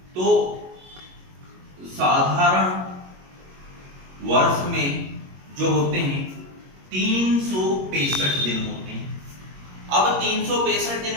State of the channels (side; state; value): left; late; 22 ms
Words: तो साधारण वर्ष में जो होते हैं 365 दिन होते हैं। अब 365 दिन